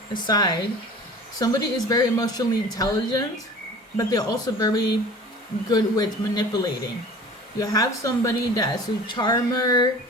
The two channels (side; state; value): both; normal; correlation 0.42